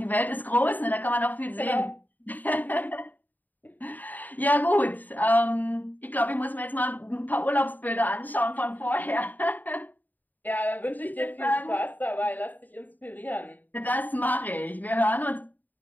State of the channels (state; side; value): late; right; 0.085 ms